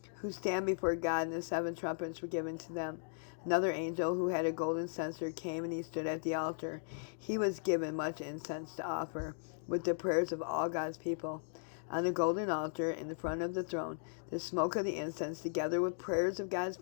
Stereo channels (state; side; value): silent; right; digital silence